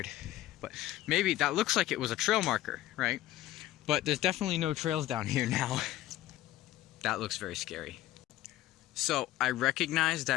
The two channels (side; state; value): right; quieter; 14.8 dB